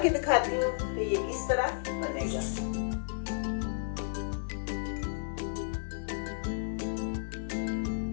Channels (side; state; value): right; silent; 56 dB below the other